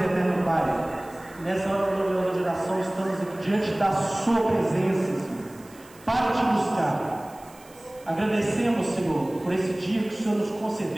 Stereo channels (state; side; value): noise; right; hiss, 25 dB below the sound